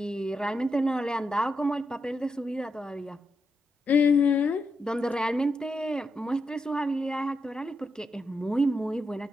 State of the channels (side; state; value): both; normal; correlation 0.84